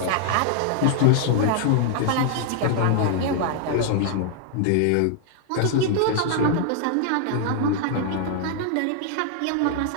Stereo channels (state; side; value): different; both; correlation 0.00